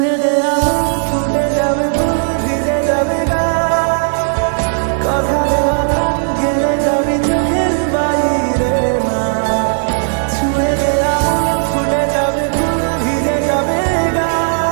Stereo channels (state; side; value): silent; left; digital silence